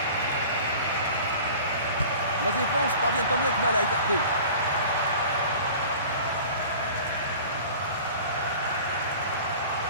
La défense parvient tant bien que mal à écarter.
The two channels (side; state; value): both; inverted; correlation -0.42